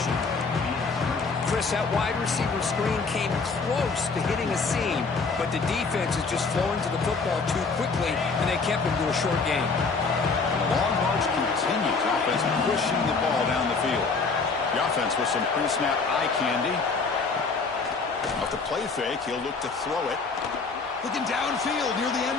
Chris, that wide receiver screen came close to hitting a seam, but the defense is just flowing to the football too quickly, and they kept him to a short game. The long march continues. Offense pushing the ball down the field. The offense with some pre-snap eye candy. Off the play fake, he'll look to throw it. Looking downfield near the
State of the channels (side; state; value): right; quieter; 4.5 dB